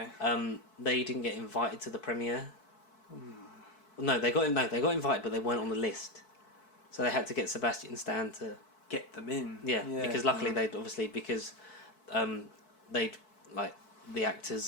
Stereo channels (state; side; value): late; right; 4.6 ms